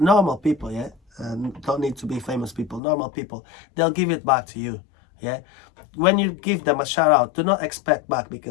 people, yeah, don't need to be famous people, normal people, they'll give it back to you, yeah. When you give them a shout out, do not expect back,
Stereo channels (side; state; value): right; drops out; at 2.8 s